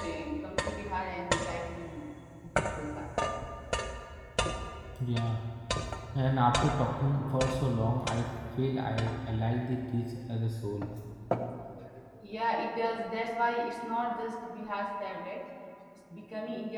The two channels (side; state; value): both; identical; correlation 1.00